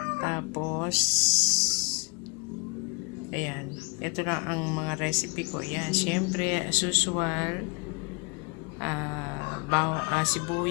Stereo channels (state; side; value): quieter; right; 31.6 dB